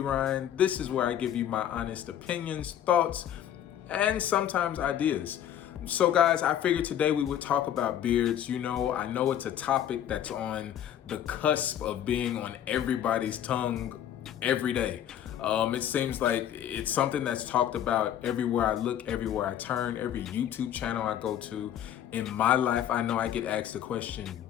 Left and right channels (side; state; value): right; quieter; 10.5 dB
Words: This is where I give you my honest opinions, thoughts, and sometimes ideas. So, guys, I figured today we would talk about beards. You know, I know it's a topic that's on the cusp of being on everybody's tongue every day. It seems like it's something that's talked about everywhere I look, everywhere I turn, every YouTube channel I go to. In my life, I know I get asked the question